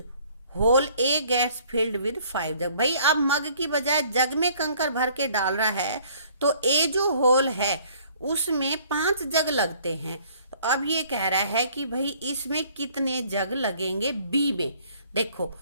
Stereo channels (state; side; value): inverted; both; correlation -0.58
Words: whole A gets filled with 5 jug, भाई अब मग की बजाय जग में कंकर भर के डाल रहा है, तो ए जो होल है उसमें 5 जग लगते हैं। तो अब ये कह रहा है कि भाई इसमें कितने जग लगेंगे? बी में देखो